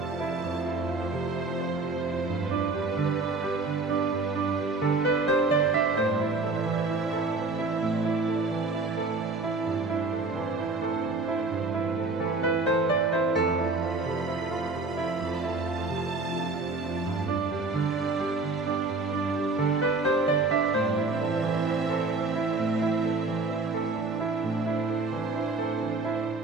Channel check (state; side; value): quieter; left; 3.5 dB